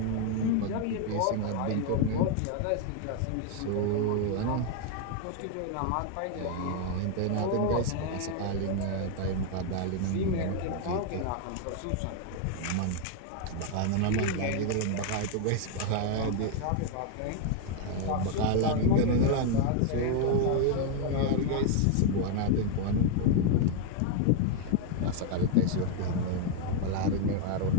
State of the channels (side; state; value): both; different; correlation 0.00